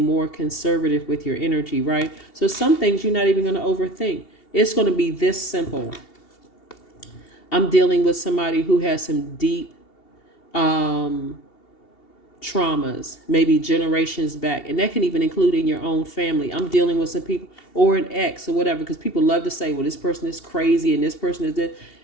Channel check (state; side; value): late; right; 2.7 ms